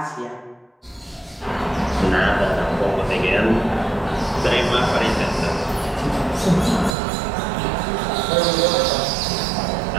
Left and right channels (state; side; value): drops out; left; at 7.0 s